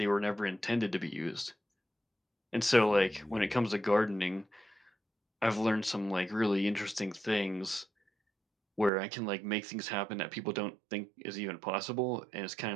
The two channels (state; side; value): drops out; left; at 8.9 s